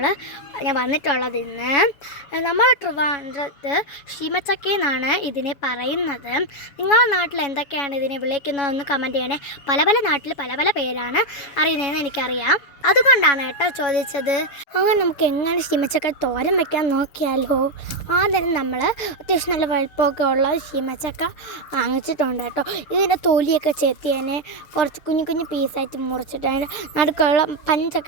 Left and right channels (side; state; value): right; late; 7.1 ms